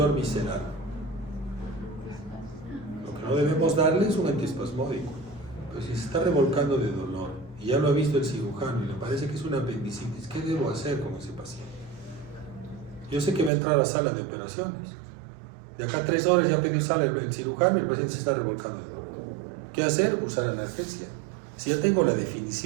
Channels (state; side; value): drops out; left; at 13.5 s